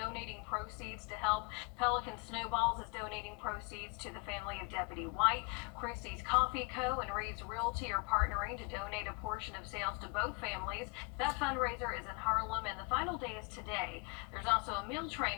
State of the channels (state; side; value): quieter; right; 29.8 dB